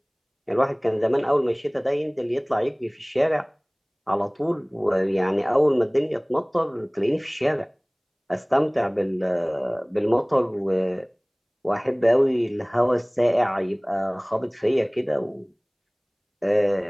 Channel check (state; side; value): identical; both; correlation 1.00